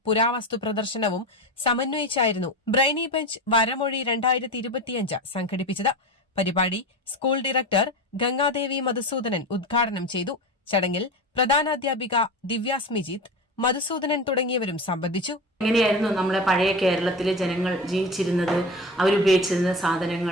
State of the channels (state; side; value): normal; both; correlation 0.27